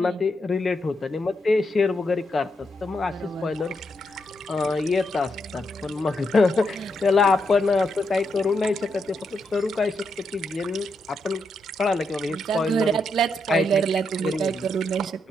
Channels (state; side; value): normal; both; correlation 0.81